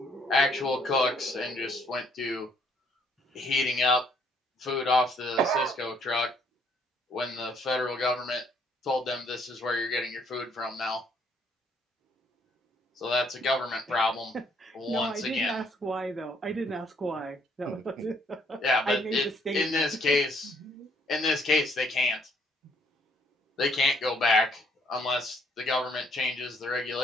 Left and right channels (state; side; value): normal; both; correlation 0.67